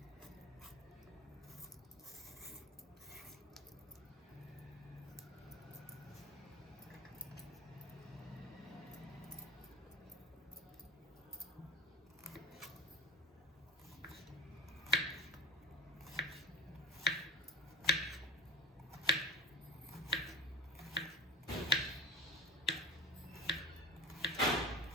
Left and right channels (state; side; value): normal; both; correlation 0.31